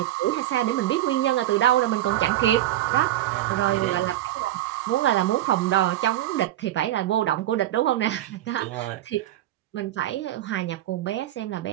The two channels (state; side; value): quieter; left; 13.9 dB